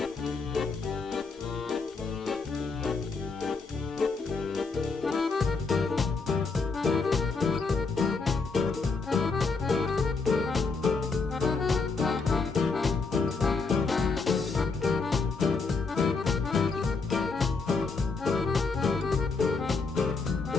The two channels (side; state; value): right; quieter; 4.3 dB